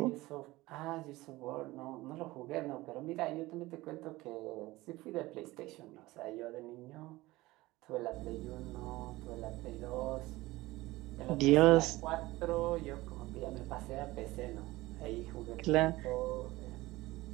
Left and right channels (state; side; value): quieter; left; 19.3 dB